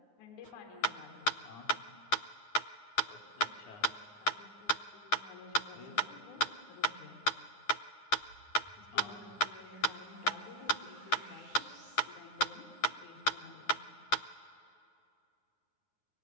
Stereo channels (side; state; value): right; late; 9.6 ms